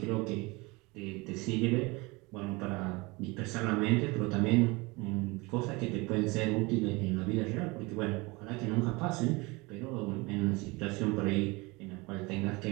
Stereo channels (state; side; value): quieter; left; 24.9 dB